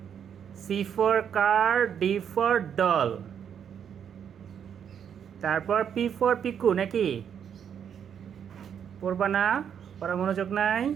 C for car, D for doll, তারপর পি ফর পিকু নাকি? পড়বা না? পড়া মনোযোগ নাই?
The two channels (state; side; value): quieter; left; 8.2 dB